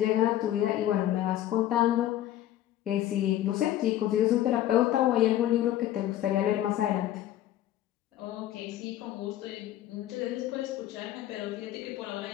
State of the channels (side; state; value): right; quieter; 12.9 dB